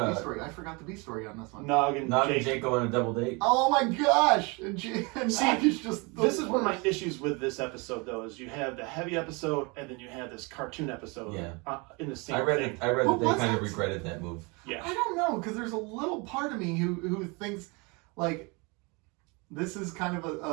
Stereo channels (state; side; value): quieter; left; 29.0 dB